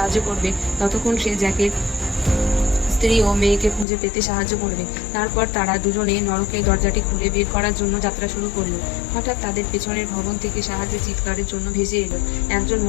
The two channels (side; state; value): right; drops out; at 3.9 s